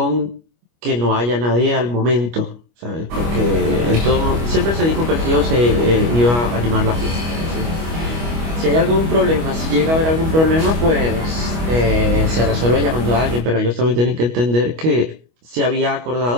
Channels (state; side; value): late; left; 25 ms